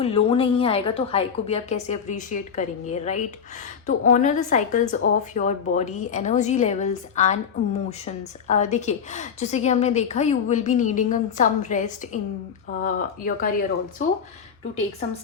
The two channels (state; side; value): quieter; right; 6.9 dB